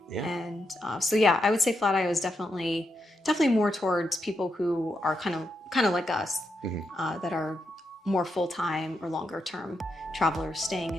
And so yeah, I would say Flatio is definitely more towards people who are kind of like us, that are more full-time or longer term travelers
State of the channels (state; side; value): normal; both; correlation 0.83